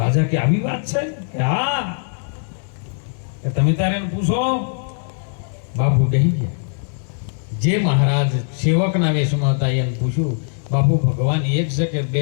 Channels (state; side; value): silent; right; digital silence